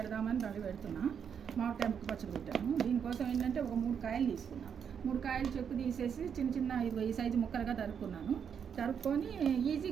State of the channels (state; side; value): quieter; left; 7.5 dB